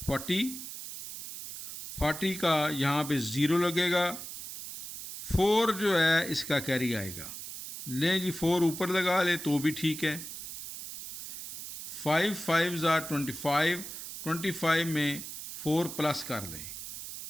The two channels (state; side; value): noise; right; hiss, 9 dB below the sound